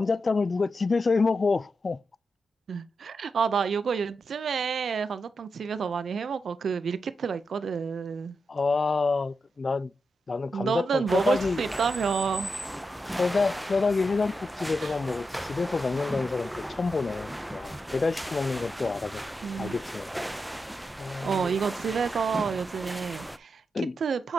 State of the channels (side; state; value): both; normal; correlation 0.87